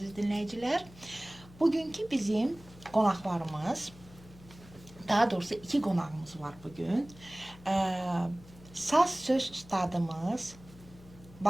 dinləyicilər, bugünkü bizim qonaqlarımız, daha doğrusu iki qonağımız var bugün. Saz söz ustadımız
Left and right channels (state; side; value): noise; left; hum, 21 dB below the sound